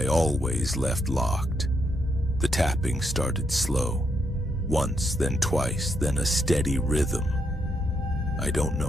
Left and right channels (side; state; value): both; normal; correlation 0.78